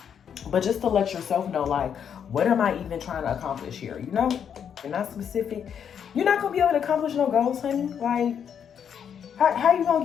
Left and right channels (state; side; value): quieter; right; 8.0 dB